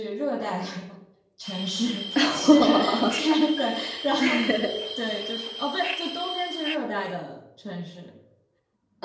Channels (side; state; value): both; identical; correlation 1.00